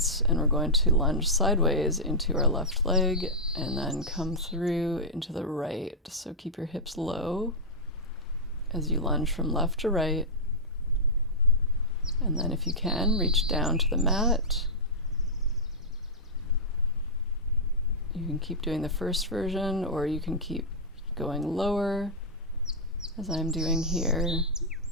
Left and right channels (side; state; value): both; normal; correlation -0.12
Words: and we're going to lunge sideways into our left leg and then come through into the right. So keep your hips low as you lunge from left to right. And then if you can, reach down to the mat. You can keep doing the first version, or you can keep going lower, as I'm doing here,